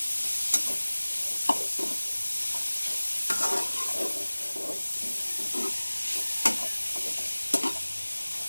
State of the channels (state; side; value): inverted; both; correlation -1.00